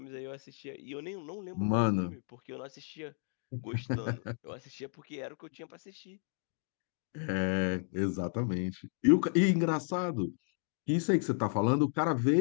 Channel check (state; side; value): silent; right; 56 dB below the other